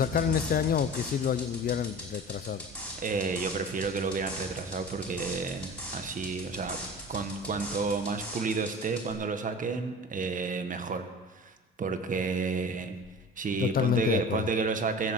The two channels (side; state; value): both; normal; correlation 0.38